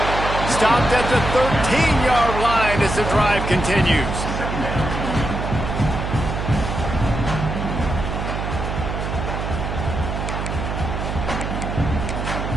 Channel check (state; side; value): noise; right; hum, 3 dB below the sound